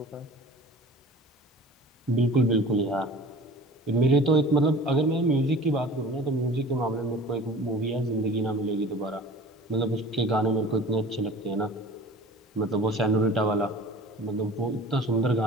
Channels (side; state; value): both; normal; correlation 0.43